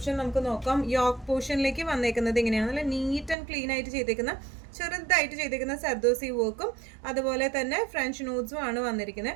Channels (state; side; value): drops out; left; at 3.4 s